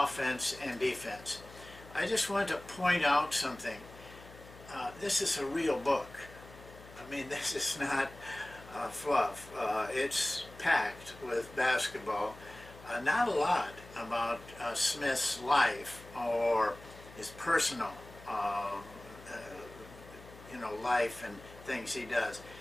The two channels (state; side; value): noise; left; hum, 19 dB below the sound